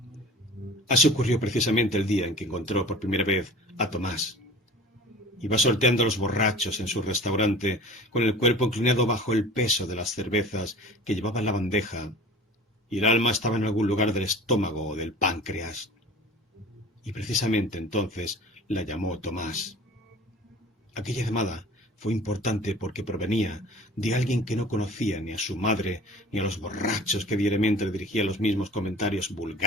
Así ocurrió precisamente el día en que encontró por primera vez a Tomás. Iba sorteando a los borrachos en su restaurante con el cuerpo inclinado bajo el peso de las cervezas que llevaba en la bandeja, y el alma estaba en algún lugar del estómago o del páncreas. Y precisamente entonces la llamó Tomás. Aquella llamada fue importante porque provenía de alguien que no conocía ni a su madre ni a los borrachos que diariamente le dirigían los mismos comentarios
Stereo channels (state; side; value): normal; both; correlation 0.42